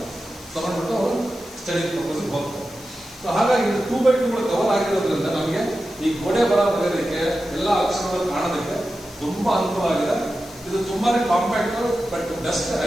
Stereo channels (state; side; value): noise; left; hiss, 20 dB below the sound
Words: ತಗೊಂಡ್ಬಿಟ್ಟು ಅವರು ಸ್ಟಡಿ ಪರ್ಪಸ್ ಹೋಗ್ತಾರೆ. ಸೊ ಹಾಗಾಗಿ 2x2 ಕವರ್ ಆಗಿರೋದ್ರಿಂದ ನಮಗೆ ಈ ಗೋಡೆ ಬರ ಬರೆಯೋದಕ್ಕೆ ಎಲ್ಲ ಅಕ್ಷರಗಳು ಕಾಣೋದಕ್ಕೆ ತುಂಬಾ ಅನುಕೂಲ ಆಗಿದೆ. ಇದು ತುಂಬಾನೇ ಕಾಂಪ್ಯಾಕ್ಟ್ ಬಟ್ ಬೆಸ್ಟ್